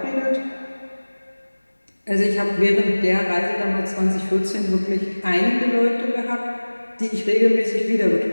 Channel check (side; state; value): both; inverted; correlation -1.00